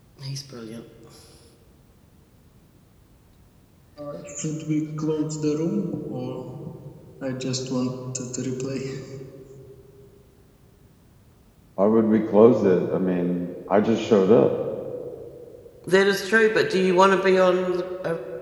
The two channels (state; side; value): identical; both; correlation 1.00